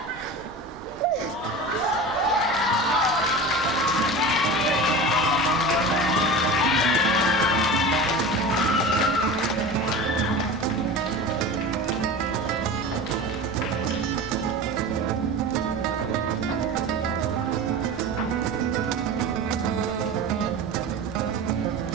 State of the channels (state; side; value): noise; right; rumble, 23 dB below the sound